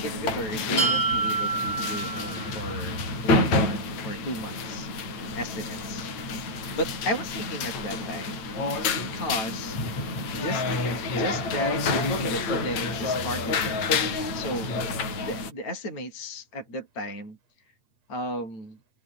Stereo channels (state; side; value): late; right; 9.0 ms